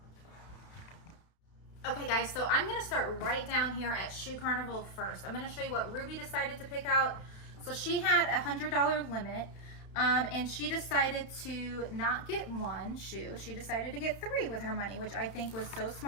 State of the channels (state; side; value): late; right; 32 ms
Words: Okay guys, so I'm gonna start right down here at Shoe Carnival first. I'm gonna show you what Ruby decided to pick out. So she had a $100 limit, and she decided to not get 1 shoe. She decided to get 3 with her money, which I think was so